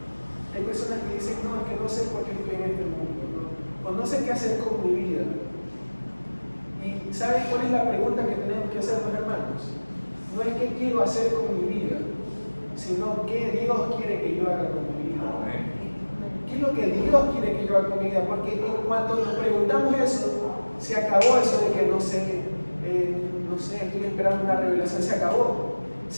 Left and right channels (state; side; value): inverted; both; correlation -1.00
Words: Hay personas que dicen: no, es que no sé por qué estoy en este mundo, ¿no? O no sé qué hacer con mi vida. ¿Y saben cuál es la pregunta que tenemos que hacer, los hermanos? No es qué quiero hacer con mi vida, sino qué Dios quiere que yo haga con mi vida. ¿Qué es lo que Dios quiere que yo haga con mi vida? Porque en cuanto nos preguntamos eso, se acabó eso de que no sé, estoy esperando una revelación, se acabó.